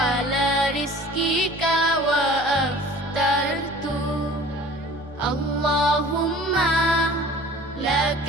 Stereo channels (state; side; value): normal; both; correlation 0.46